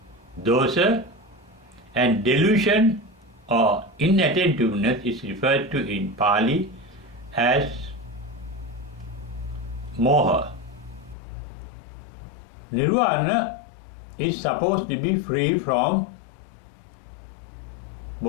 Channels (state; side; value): drops out; right; at 11.2 s